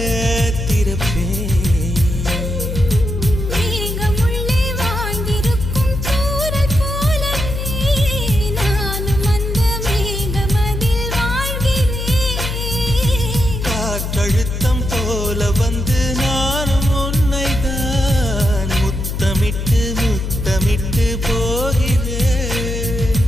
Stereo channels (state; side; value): noise; left; hum, 4 dB below the sound